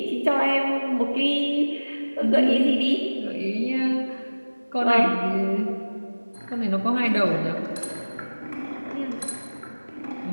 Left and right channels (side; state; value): both; inverted; correlation -1.00